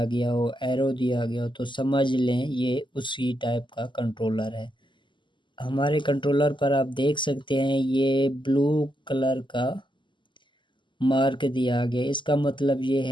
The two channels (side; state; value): right; late; 0.23 ms